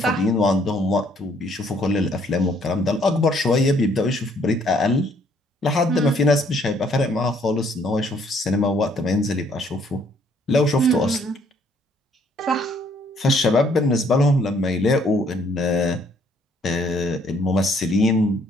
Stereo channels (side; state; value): both; normal; correlation 0.65